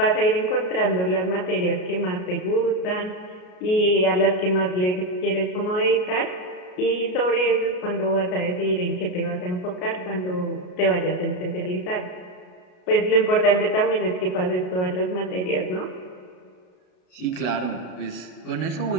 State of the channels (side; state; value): right; late; 33 ms